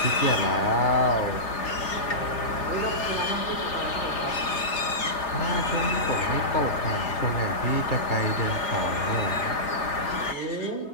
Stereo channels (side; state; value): right; late; 3.3 ms